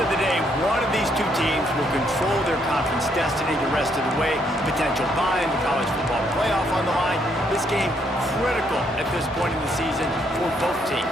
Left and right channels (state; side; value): normal; both; correlation 0.72